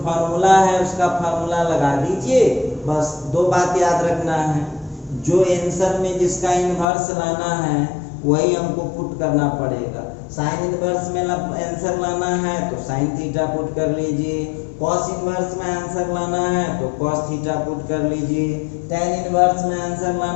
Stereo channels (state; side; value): drops out; right; at 6.9 s